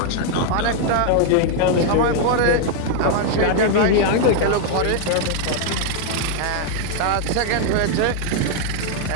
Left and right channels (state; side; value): different; both; correlation 0.00